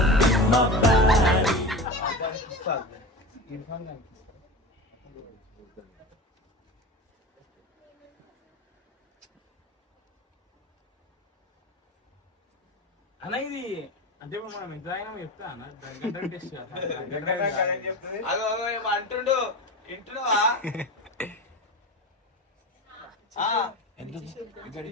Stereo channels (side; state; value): both; normal; correlation 0.28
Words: అన్న ఇది అంటే మనం ఎంత అయినా చెప్తా అన్న టెస్ట్ అంటుండు ఇంటున్నావా